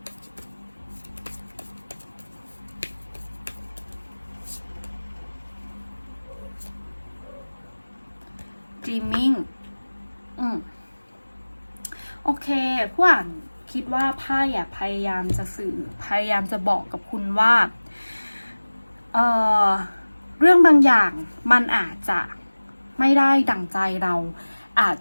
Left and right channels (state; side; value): inverted; both; correlation -1.00